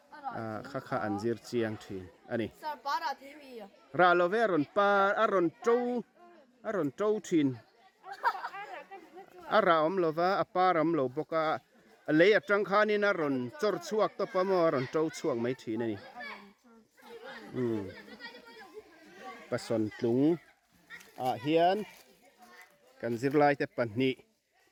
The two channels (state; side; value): identical; both; correlation 1.00